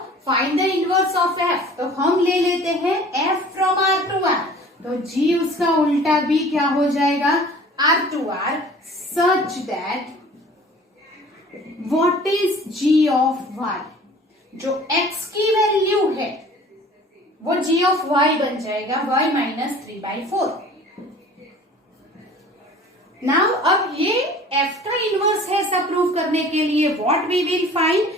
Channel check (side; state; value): both; normal; correlation 0.47